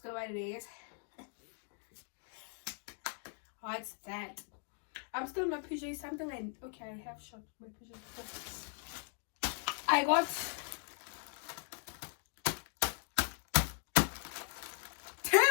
What it is? What's that? I'm still in my PJs. Something like okay, I have shot my PJs before. I got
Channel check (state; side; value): silent; right; 52 dB below the other